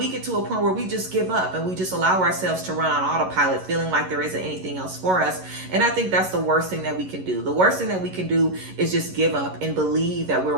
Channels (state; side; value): late; left; 11 ms